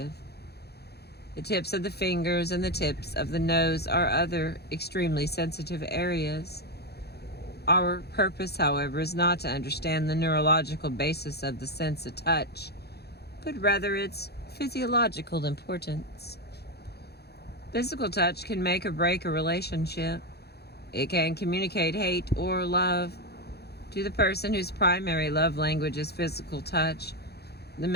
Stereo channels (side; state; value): right; late; 0.47 ms